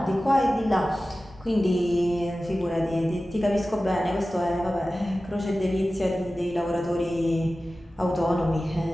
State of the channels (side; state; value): both; normal; correlation 0.96